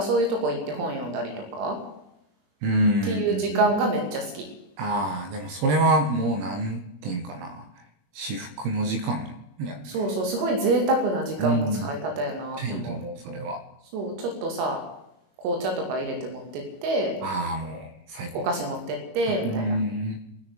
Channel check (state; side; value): late; left; 22 ms